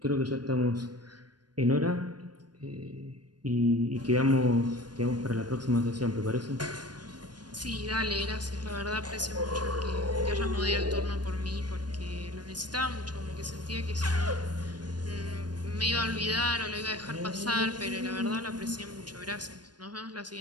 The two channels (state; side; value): late; left; 0.70 ms